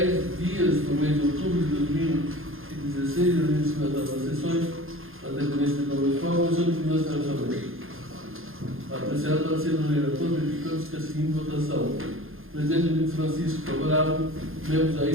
dias do mês de outubro de 2016, a início das sessões, a dependência do Municipal, a Comissão de Finanças e Orçamento. Apreciado para ser o relator, verificando-se que a seguinte votação: Presidente Luiz Francisco, favorável; membros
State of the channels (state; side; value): late; left; 0.60 ms